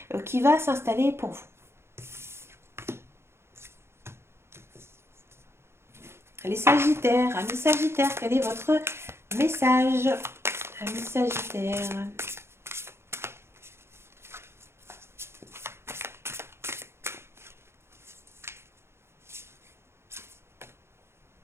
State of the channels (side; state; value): left; late; 0.12 ms